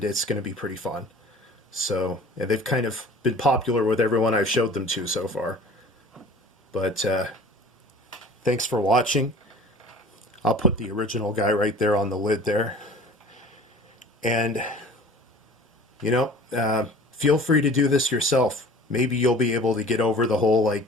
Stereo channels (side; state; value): both; normal; correlation 0.45